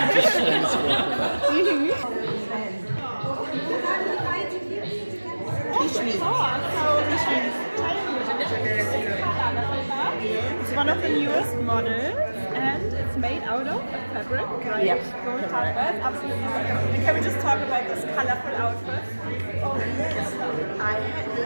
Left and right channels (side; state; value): both; inverted; correlation -1.00